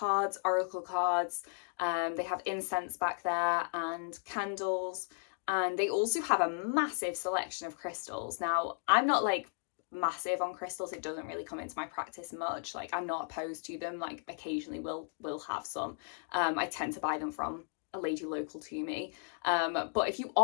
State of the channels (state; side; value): silent; right; 55 dB below the other